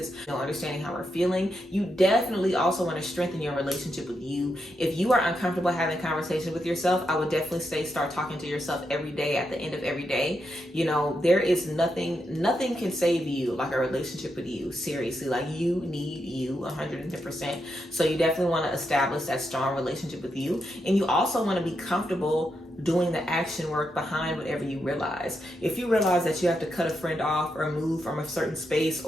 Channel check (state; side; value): normal; both; correlation 0.83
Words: you know, understanding how we're feeling. You definitely also want to strengthen your relationship with you. If you are uncomfortable having conversation with yourself, I would definitely say start talking to yourself every day at the end of every day. You know, there is nothing can save you like a relationship with you. Seriously, like you need you 110%. So you definitely want to establish that strong relationship with you. And you also want to be comfortable doing the action work behind whatever you realize. If you realize that you have to cut a friend off or move from a certain space